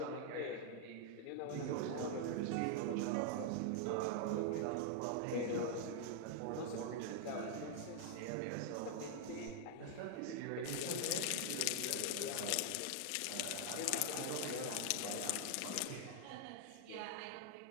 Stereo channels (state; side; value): different; both; correlation 0.00